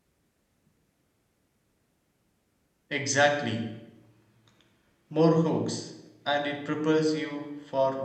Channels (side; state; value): both; identical; correlation 1.00